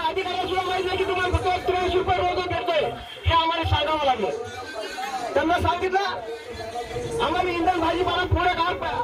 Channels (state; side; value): identical; both; correlation 1.00